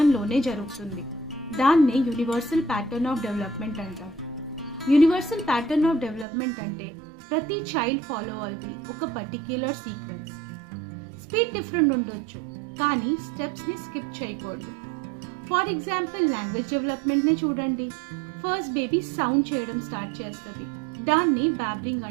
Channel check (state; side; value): drops out; left; at 6.2 s